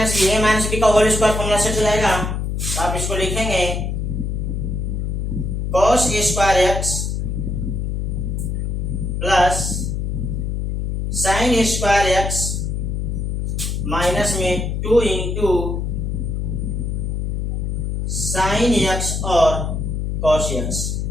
बी का होल स्क्वायर फॉर्मूला सेट हो जाएगा। तो आप इसको लिखेंगे cos square x plus sine square x minus में 2 इंटू साइन एक्स और कॉस एक्स,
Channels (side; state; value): left; noise; hum, 1 dB below the sound